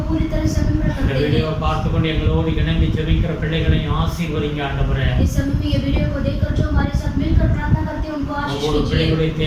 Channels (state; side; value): identical; both; correlation 1.00